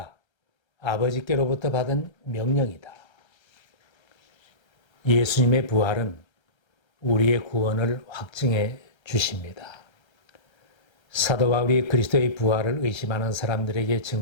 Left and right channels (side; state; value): right; late; 1.3 ms